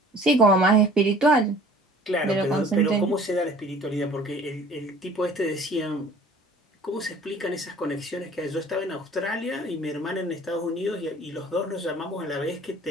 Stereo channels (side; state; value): both; normal; correlation 0.49